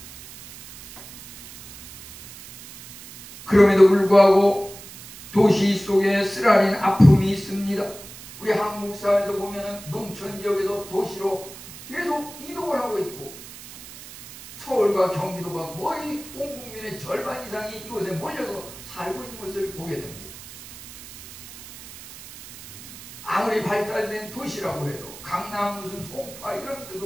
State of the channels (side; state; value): right; noise; hiss, 16 dB below the sound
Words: 그럼에도 불구하고 도시 속에 쓰라린 아픔이 있습니다. 우리 한국 사회도 보면은 농촌 지역에서 도시로 계속 이동을 하고 있고 서울과 경기도가 거의 온 국민의 절반 이상이 이곳에 몰려서 살고 있는 것을 보게 됩니다. 아무리 발달된 도시라고 해도 강남 무슨 송파 이런